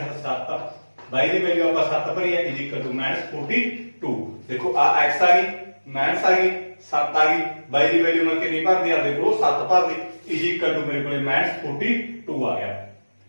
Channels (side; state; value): both; inverted; correlation -1.00